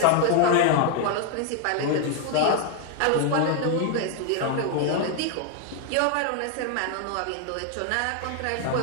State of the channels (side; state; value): both; different; correlation 0.00